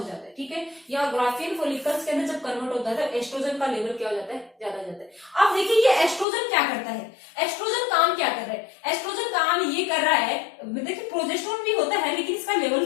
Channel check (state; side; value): drops out; right; at 6.2 s